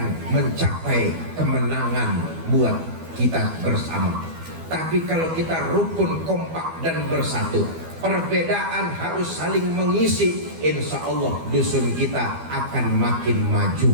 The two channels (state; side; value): late; left; 12 ms